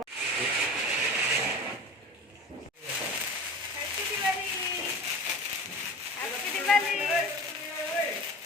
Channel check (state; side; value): normal; both; correlation 0.34